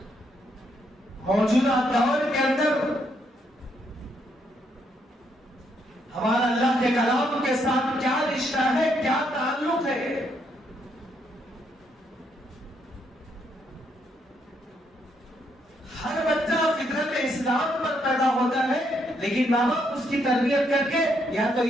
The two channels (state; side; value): normal; both; correlation 0.75